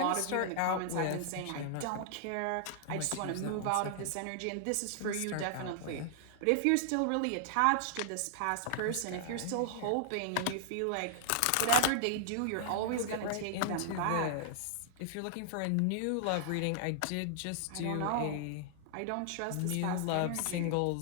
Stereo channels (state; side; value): different; both; correlation -0.01